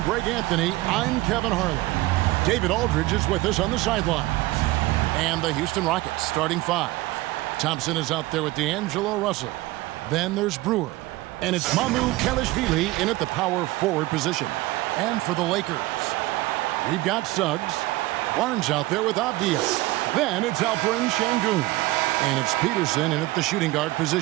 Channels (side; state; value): left; quieter; 19.0 dB